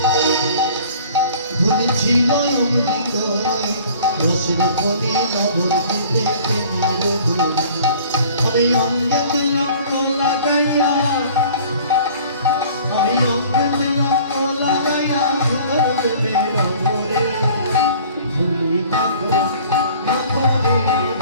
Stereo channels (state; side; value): inverted; both; correlation -0.49